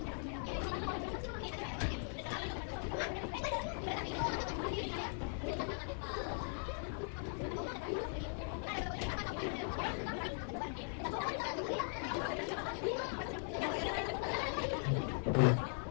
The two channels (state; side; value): silent; right; 51 dB below the other